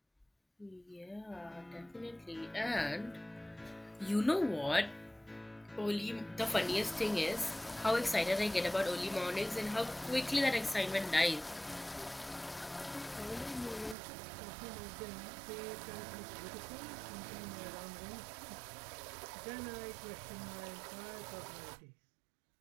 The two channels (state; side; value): drops out; left; at 14.0 s